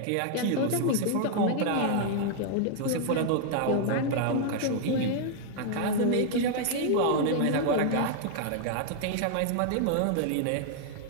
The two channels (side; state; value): both; different; correlation 0.00